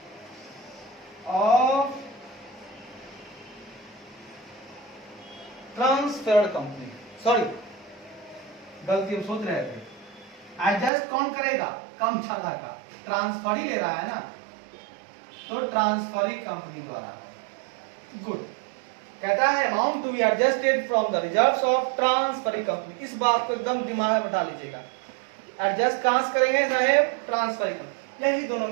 sorry गलती हम सोच रहे थे, एडजस्ट कौन करेगा, कम ज्यादा का, ट्रांसफर ही ले रहा है ना, तो ट्रांसफरिंग कंपनी द्वारा। गुड, कहता है amount to be adjusted from the reserves of transferring company. इस बात को एकदम दिमाग में बैठा लीजिएगा, एडजस्ट कहां से करेंगे साहेब, ट्रांसफरिंग कंपनी। यही दोनों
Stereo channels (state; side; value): drops out; left; at 10.9 s